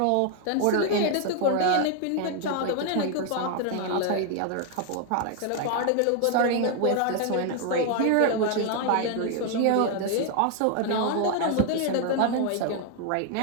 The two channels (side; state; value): both; different; correlation 0.00